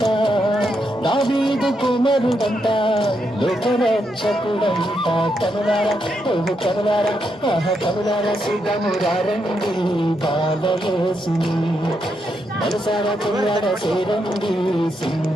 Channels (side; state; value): both; normal; correlation 0.81